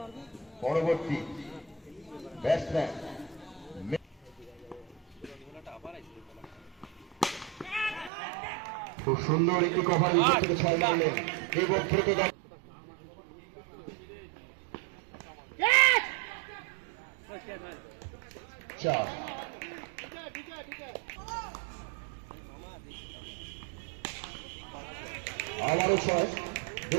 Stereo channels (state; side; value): drops out; left; at 8.1 s